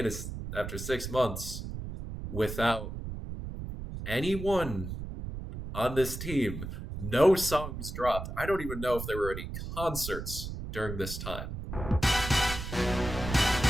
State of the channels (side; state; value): right; noise; rumble, 7 dB below the sound